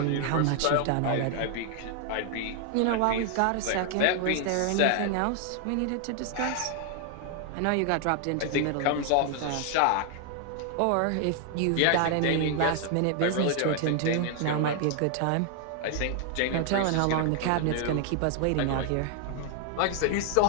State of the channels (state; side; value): different; both; correlation 0.00